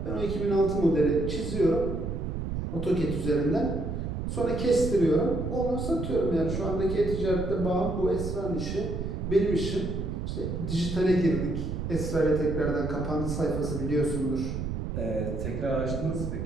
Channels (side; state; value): right; noise; rumble, 4 dB below the sound